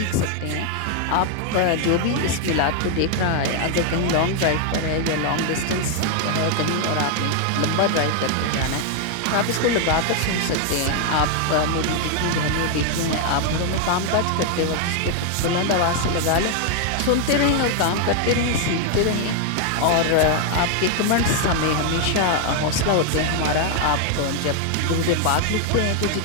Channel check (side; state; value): both; different; correlation 0.00